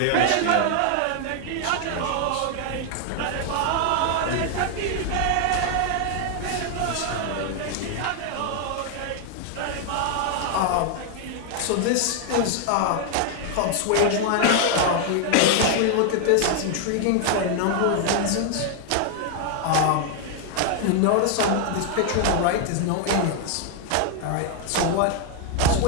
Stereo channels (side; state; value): both; different; correlation 0.00